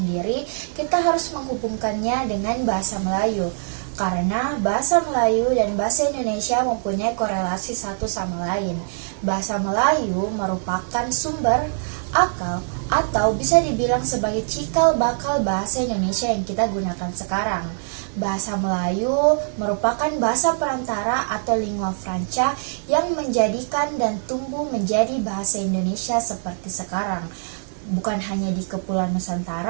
kita harus menghubungkannya dengan bahasa Melayu. Karena bahasa Melayu dan bahasa Indonesia mempunyai korelasi satu sama lain. Bahasa Melayu merupakan sumber, akal, atau bisa dibilang sebagai cikal bakal bahasa Indonesia yang kita gunakan sekarang. Bahasa Melayu merupakan bahasa perantara atau lingua franca yang menjadikan dan tumbuh menjadi bahasa Indonesia seperti sekarang. Bukan hanya di Kepulauan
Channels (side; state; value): left; silent; digital silence